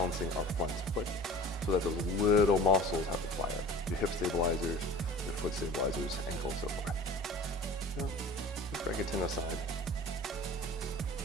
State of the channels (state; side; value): normal; both; correlation 0.42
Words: our front foot so that those little muscles have to fire. Your hip stabilizers, your foot stabilizers, ankle, and so forth. Just break it 10 aside.